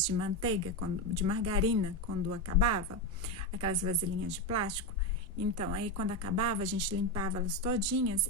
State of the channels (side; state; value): both; normal; correlation 0.11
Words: de manteiga, de margarina, quando acabava, aquelas vasilhinhas de plástico. Então, aí quando acabava, a gente limpava elas todinhas